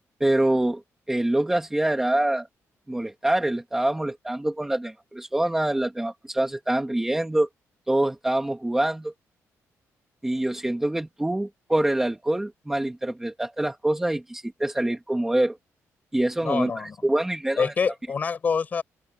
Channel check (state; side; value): normal; both; correlation 0.97